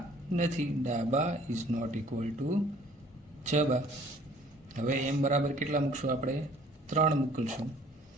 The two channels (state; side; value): normal; both; correlation 0.55